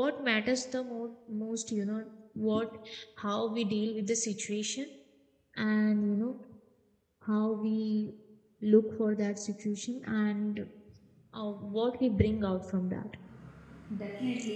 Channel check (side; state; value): both; identical; correlation 1.00